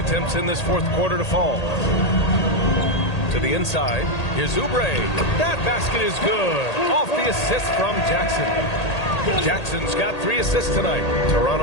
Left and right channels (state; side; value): late; right; 1.8 ms